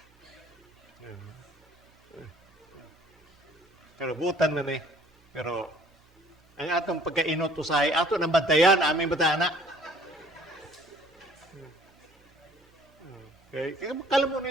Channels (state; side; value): normal; both; correlation 0.56